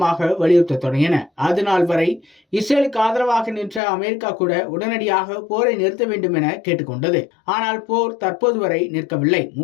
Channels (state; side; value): drops out; right; at 3.8 s